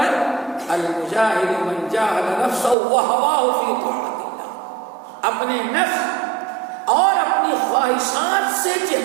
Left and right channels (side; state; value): left; drops out; at 2.8 s